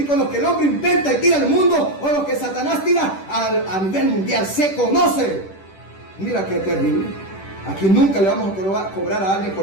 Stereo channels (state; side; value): late; right; 10 ms